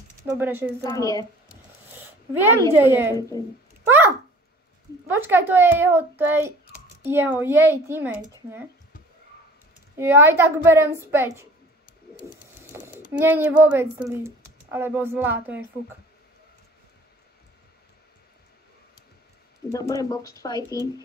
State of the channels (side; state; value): both; normal; correlation 0.47